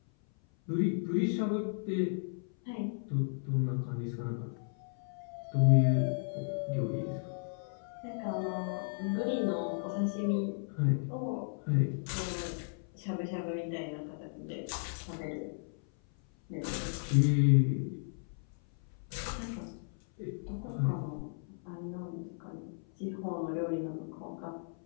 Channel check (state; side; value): silent; right; 55 dB below the other